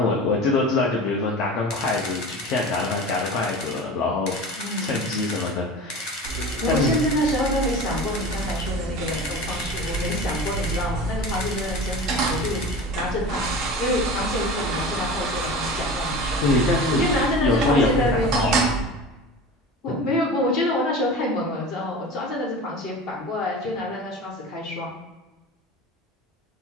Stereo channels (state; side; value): normal; both; correlation 0.34